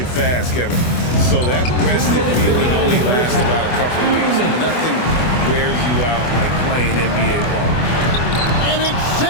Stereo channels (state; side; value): late; right; 24 ms